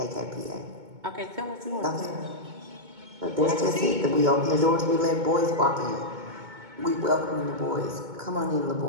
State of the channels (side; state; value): left; late; 2.2 ms